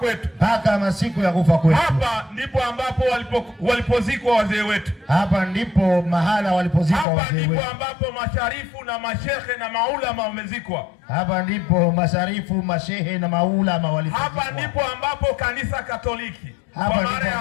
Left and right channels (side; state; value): right; drops out; at 7.1 s